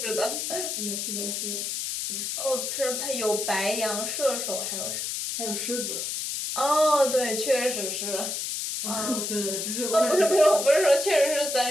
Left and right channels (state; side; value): noise; left; hiss, 3 dB below the sound